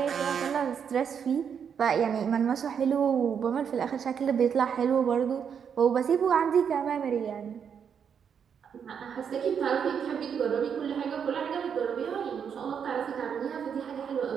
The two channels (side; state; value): left; quieter; 7.4 dB